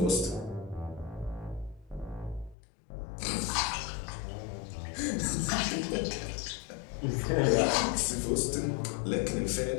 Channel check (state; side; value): drops out; right; at 2.6 s